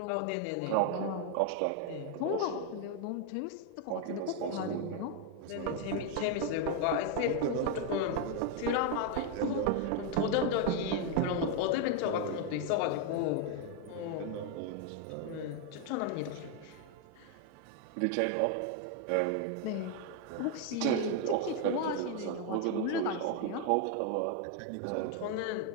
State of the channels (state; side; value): different; both; correlation 0.01